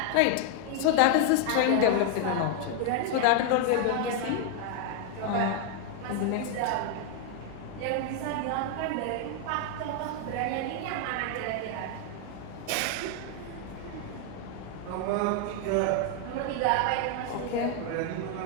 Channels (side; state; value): both; different; correlation 0.00